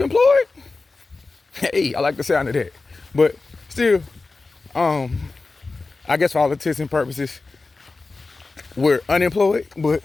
Hey, I like the sound of that. But still, I guess for all intents and purposes, we're unemployed, but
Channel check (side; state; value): right; quieter; 3.7 dB